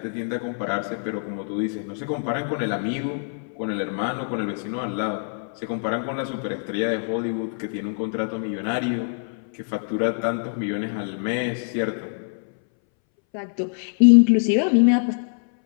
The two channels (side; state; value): right; silent; 62 dB below the other